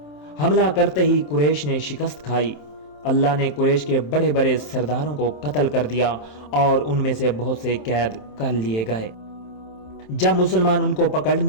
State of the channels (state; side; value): late; right; 27 ms